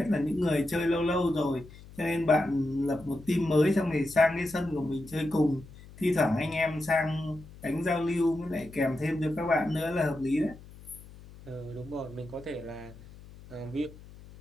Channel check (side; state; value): left; noise; hum, 19 dB below the sound